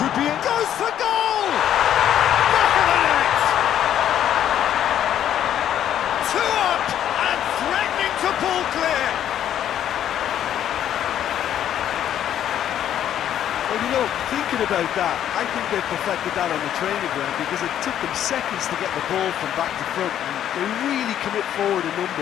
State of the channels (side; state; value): right; quieter; 10.5 dB